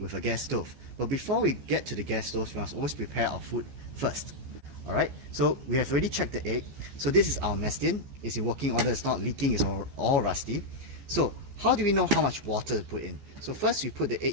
a gas stove. But before we get to the gas stove, we must always prepare our food first. Alright, so we have already checked the egg. So this is our mess tin. It's in working order, it's not leaking, it's all rusty. So how do we know how much water to put in? So first we put the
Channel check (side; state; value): left; late; 14 ms